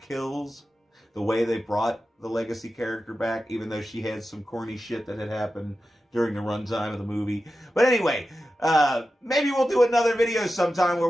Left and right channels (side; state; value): both; normal; correlation 0.92